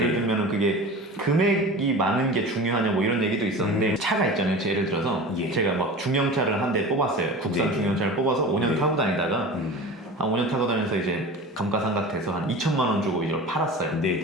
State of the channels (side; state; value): both; normal; correlation 0.34